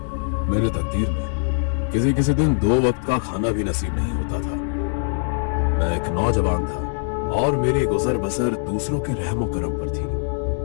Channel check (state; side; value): silent; right; digital silence